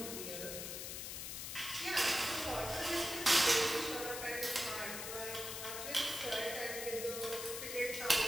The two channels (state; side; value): noise; left; hiss, 5 dB below the sound